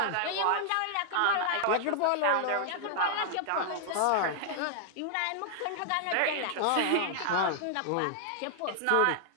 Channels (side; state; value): both; different; correlation -0.01